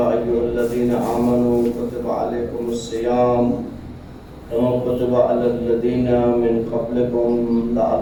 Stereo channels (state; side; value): identical; both; correlation 1.00